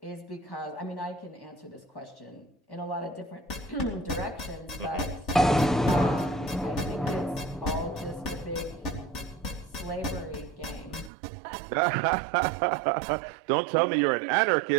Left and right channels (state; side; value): drops out; left; at 11.1 s